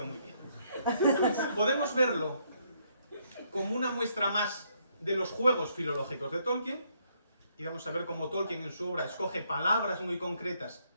muy bien. Podemos verlo como una muestra más de los juegos filológicos de Tolkien, y vamos a ver cómo Tolkien en su obra escoge palabras muy concretas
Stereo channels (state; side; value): inverted; both; correlation -0.72